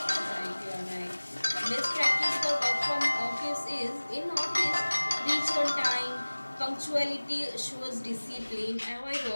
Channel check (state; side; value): inverted; both; correlation -1.00